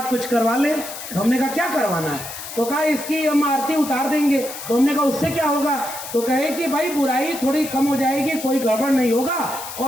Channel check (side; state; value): left; noise; hiss, 10 dB below the sound